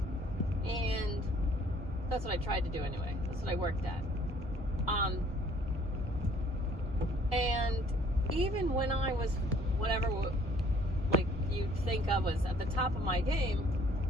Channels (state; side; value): normal; both; correlation 0.58